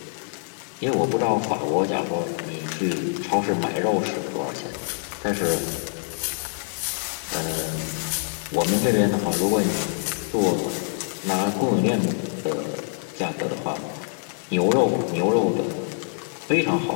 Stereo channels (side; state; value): right; silent; digital silence